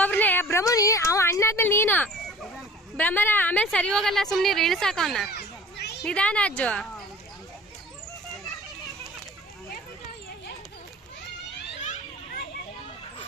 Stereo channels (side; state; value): both; normal; correlation 0.45